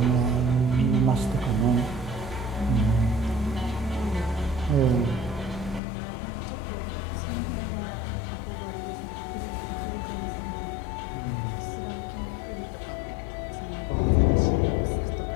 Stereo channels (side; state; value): right; drops out; at 5.8 s